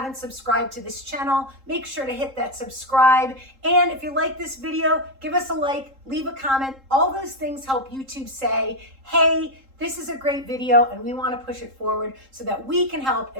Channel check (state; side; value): late; left; 3.7 ms